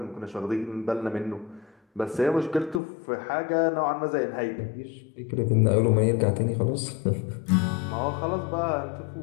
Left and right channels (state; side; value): drops out; right; at 2.8 s